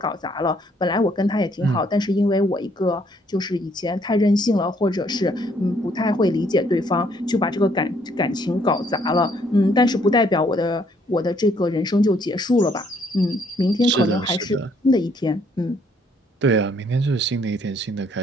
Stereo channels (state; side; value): normal; both; correlation 0.67